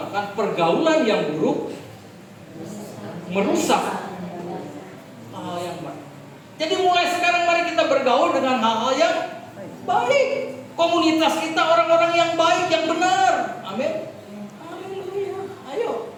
pergaulan yang buruk merusak hal yang baik. Jadi mulai sekarang mari kita bergaul dengan hal-hal yang baik. Komunitas kita orang-orang yang baik, yang benar. Amin. Haleluya. Ayo.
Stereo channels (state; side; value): identical; both; correlation 1.00